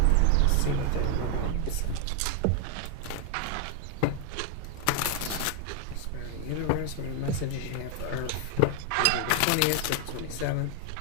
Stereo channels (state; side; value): different; both; correlation 0.00